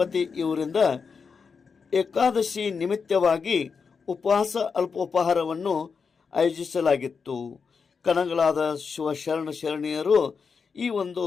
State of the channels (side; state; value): right; quieter; 5.5 dB